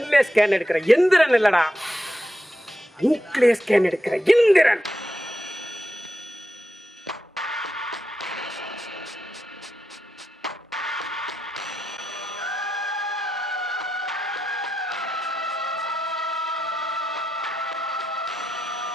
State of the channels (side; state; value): both; normal; correlation 0.87